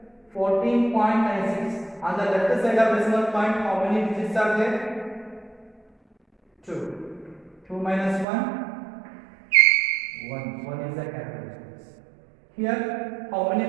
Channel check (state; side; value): drops out; left; at 8.2 s